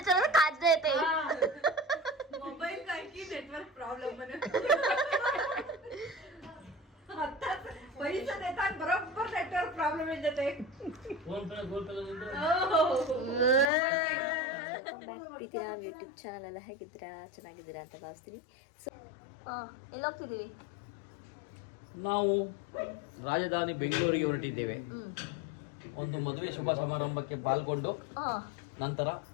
काच देते मोबाईल काय की नेटवर्क प्रॉब्लेम म्हणे आताच पैसे देतात बरोबर नेटवर्क प्रॉब्लेम येते ಪ್ರೀತಿಯ ಯೂಟ್ಯೂಬ್ ಚಾನಲ್ ಎಲ್ಲ ಹೇಗಿದ್ದೀರಾ ಚೆನ್ನಾಗಿದ್ದೀರಾ ಅಂತ ಭಾವಿಸ್ತೀನಿ. ಸೊ ಎಲ್ಲಿ ಹೋಗ್ತಿದ್ದೀವಿ ನಾವು ರಾಜಧಾನಿ ಬೆಂಗಳೂರಿಗೆ ಹೊರಟಿದ್ದೇವೆ. ಒಂದು ಮದುವೆ ಶುಭ ಸಮಾರಂಭಕ್ಕೆ ಪಾಲ್ಗೊಂಡು ನಂತರ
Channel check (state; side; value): drops out; right; at 13.7 s